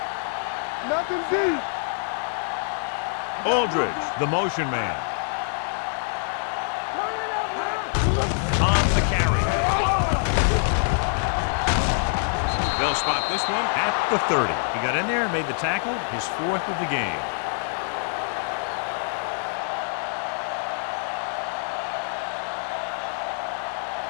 Nothing deep. Aldridge, the motion man. Turn it up, man. On the carry. They'll spot this one at the 30. He got in there and made the tackle, his 4th of the game.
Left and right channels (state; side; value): silent; right; digital silence